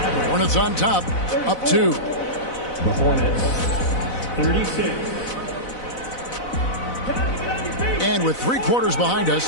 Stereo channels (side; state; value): right; late; 4.0 ms